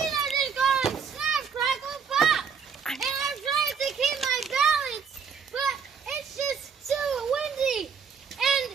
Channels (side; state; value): left; quieter; 6.4 dB